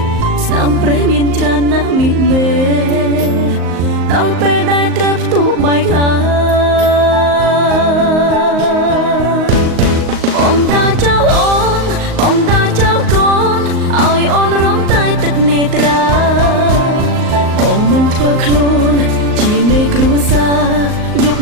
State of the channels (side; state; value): left; late; 38 ms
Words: ស្នាមព្រះមានច្រើនណាស់មីមេដល់ពេលដែលត្រូវផ្ទុះបែកហើយបងតាចោលអូនបងតាចោលកូនឲ្យអូនរំតែទឹកនេត្រាបងមិនធ្វើខ្លួនជាមេគ្រួសារយប់